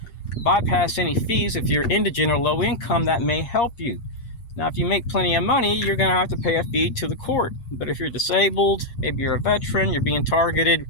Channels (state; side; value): late; right; 8.5 ms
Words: bypass any fees. If you're indigent or low income, that may help you. Now, if you make plenty of money, you're going to have to pay a fee to the court. But if you're disabled, maybe you're a veteran, you're being targeted